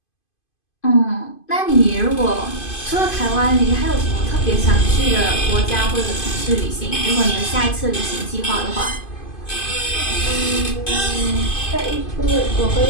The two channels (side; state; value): right; late; 2.5 ms